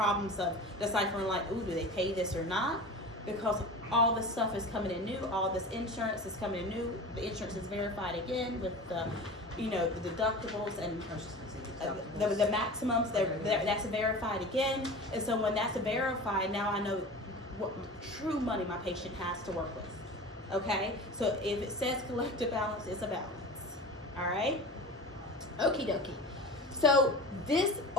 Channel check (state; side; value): normal; both; correlation 0.34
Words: of deciphering like, ooh, do they pay this or not? Because all this stuff is coming in new. All this insurance is coming in new. The insurance is verified again with the, the deductibles and the maximums. That's verified again. And so when that's verified, now I know what true money my patient has to work with. Okay? So if it says collective balance, it's a balance. All right? Okie dokie. So this